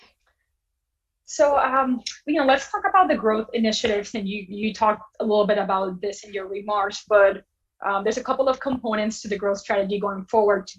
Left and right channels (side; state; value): both; identical; correlation 1.00